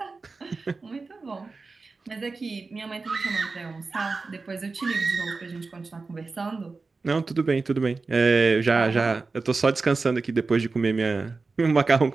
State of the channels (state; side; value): quieter; left; 4.0 dB